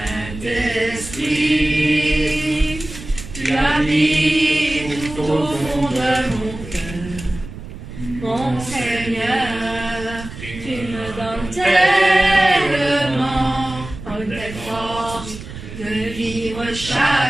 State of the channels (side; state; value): right; noise; rumble, 12 dB below the sound